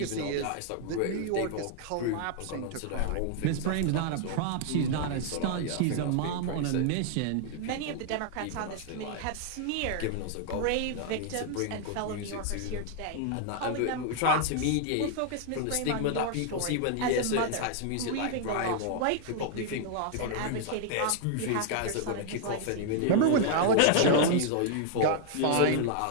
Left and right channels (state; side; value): different; both; correlation 0.00